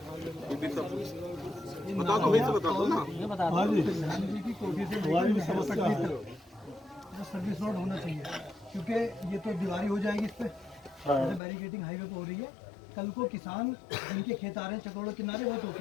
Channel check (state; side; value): drops out; right; at 11.4 s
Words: बता दो, वही से बता दो ना। प्रधानमंत्री की कोठी से हमारी भी समस्या है, सर्विस रोड होना चाहिए, क्योंकि ये तो दीवारी हो जाएगी इस पे, जैसे बैरिकेडिंग हाईवे पे हो रही है, कल को किसान जिनके खेत आ रहे हैं चकरोड़ किनारे वो तो